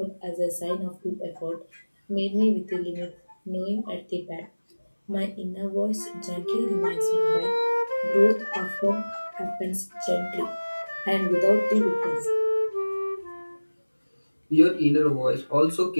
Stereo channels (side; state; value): both; inverted; correlation -1.00